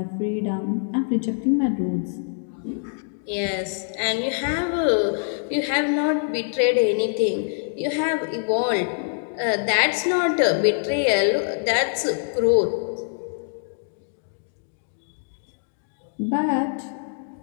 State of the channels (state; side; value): silent; right; 62 dB below the other